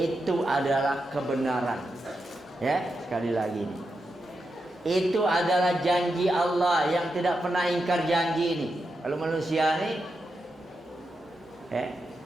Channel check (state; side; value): normal; both; correlation 0.87